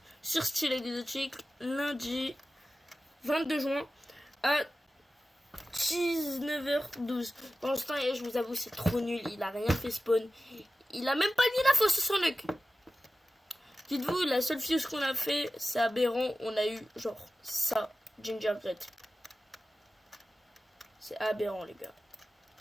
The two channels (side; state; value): both; normal; correlation 0.94